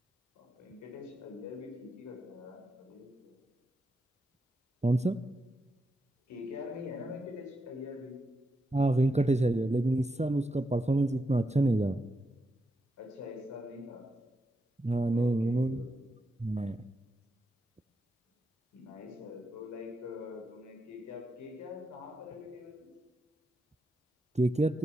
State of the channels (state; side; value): normal; both; correlation 0.84